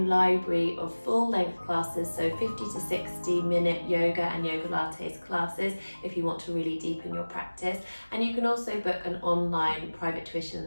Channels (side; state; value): both; inverted; correlation -1.00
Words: library of full-length classes, so 50 to 60 minute yoga and yoga lattes classes if you want to really deepen your practice. And you can also book an online private tuition